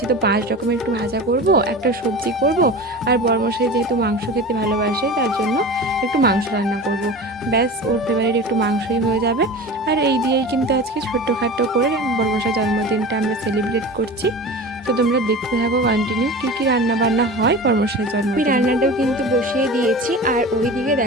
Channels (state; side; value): normal; both; correlation 0.32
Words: তো 5 রকমের একটু ভাজা করব, একটা সবজি করব, আর বড়মশাই যেহেতু মাংস খেতে ভালোবাসে তার জন্য একটু মাংস রান্না করব। ব্যাস ওর ফেভারিট একটু মাংসই হয়ে যাবে। আর এই দিয়েই কিন্তু আজকে ছোট্টখাটো করে বড়মশাই জন্মদিনটা আমরা সেলিব্রেট করছি। তো তোমরা দেখতে থাকো কন্টিনিউ কী কী রান্না বান্না হয় বড়মশাইয়ের জন্য। আমি রান্নাটাও কিন্তু বসিয়ে দিয়েছি, আর ওইদিকে